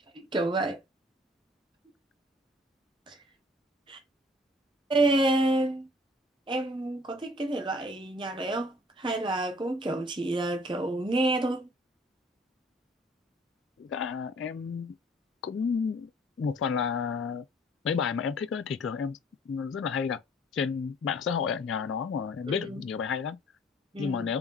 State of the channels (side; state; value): both; normal; correlation 0.55